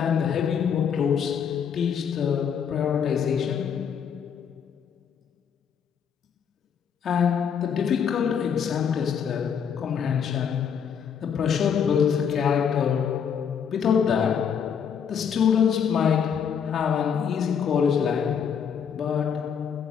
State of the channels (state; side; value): quieter; right; 7.4 dB